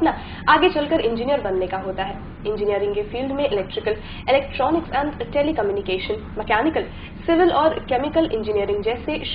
आगे चलकर इंजीनियर बनने का होता है। इंजीनियरिंग के फील्ड में electrical, electronics and telecommunication, mechanical, civil और केमिकल इंजीनियरिंग जैसे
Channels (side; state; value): both; identical; correlation 1.00